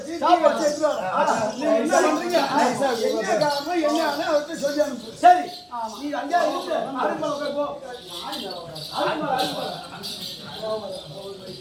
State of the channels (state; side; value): identical; both; correlation 1.00